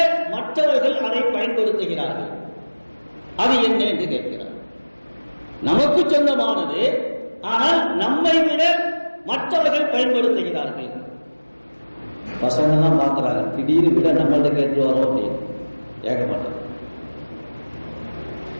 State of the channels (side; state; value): both; inverted; correlation -1.00